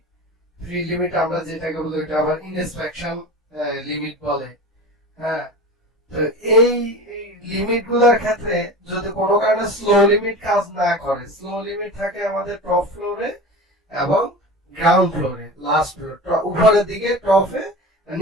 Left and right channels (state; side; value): normal; both; correlation 0.32